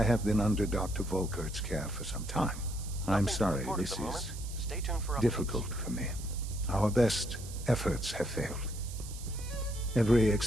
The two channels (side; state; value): right; noise; hiss, 14 dB below the sound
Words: have been under Dr. Volkert's care for some time. I'm sorry, this is difficult for me. Our best efforts have failed. Every